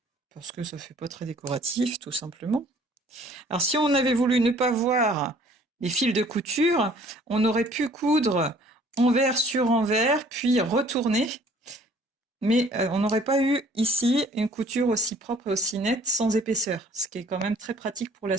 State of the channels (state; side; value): normal; both; correlation 0.55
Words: parce que ça fait pas très décoratif, tout simplement. Alors si on avait voulu ne pas voir les fils de couture, on aurait pu coudre envers sur envers, puis retourner. Mais on n'aurait pas eu ici une couture aussi propre et aussi nette sans épaisseur, ce qui est quand même très pratique pour la